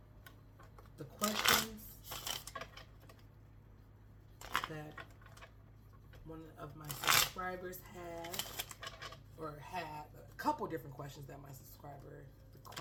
the questions that one of my subscribers had, or had a couple different questions that my subscriber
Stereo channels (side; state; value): both; identical; correlation 1.00